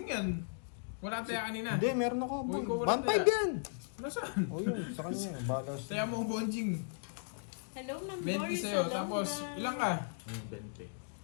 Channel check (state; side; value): silent; right; digital silence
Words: yan. Wala tayo kanina. Hindi, meron ako. Uy, ko wala 1.5 tayo. yan. Nasaan? O yun, sa kanya. Balas. Saya mo bonjing. Hello, Ma'am 20 Doris sa'yo. Saloma. Tapos, ilang ka? 20.